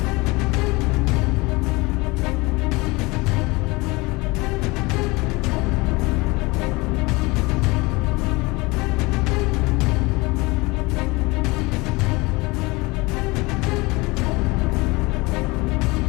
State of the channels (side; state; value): right; quieter; 24.0 dB